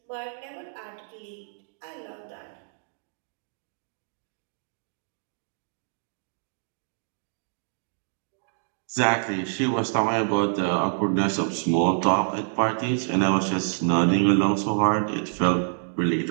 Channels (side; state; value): left; silent; digital silence